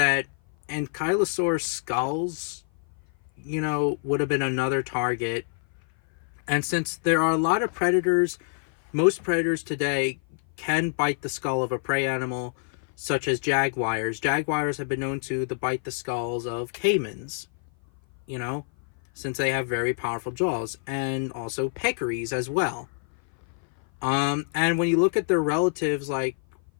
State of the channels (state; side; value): silent; right; 56 dB below the other